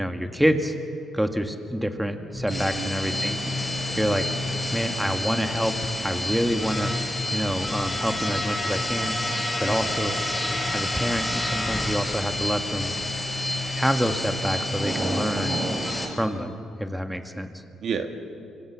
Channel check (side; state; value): both; normal; correlation 0.92